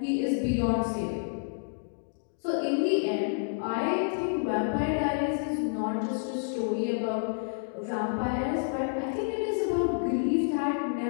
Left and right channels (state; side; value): silent; right; digital silence